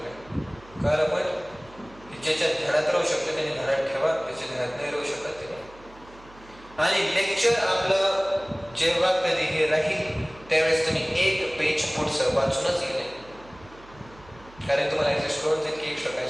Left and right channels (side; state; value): right; noise; hum, 23 dB below the sound